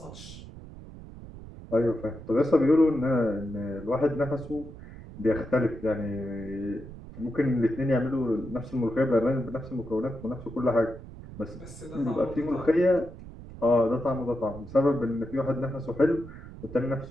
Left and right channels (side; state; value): right; noise; rumble, 15 dB below the sound